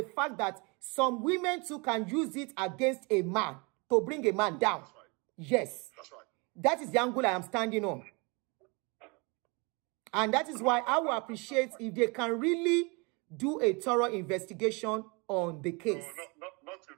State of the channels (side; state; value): left; quieter; 29.4 dB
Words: fact that some women too can use it against a man to bring a man down. That's right. Yes. That's right. That is the angle I am standing on. And that is why I will appreciate if they can really do a thorough investigation on the case. No, not if